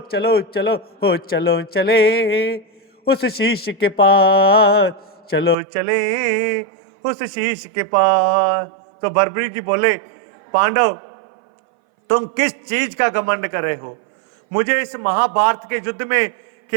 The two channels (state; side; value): drops out; left; at 5.6 s